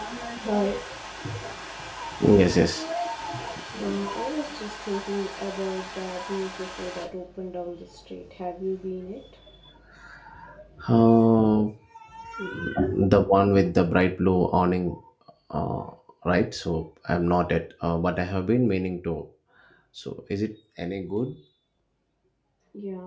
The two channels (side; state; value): both; identical; correlation 1.00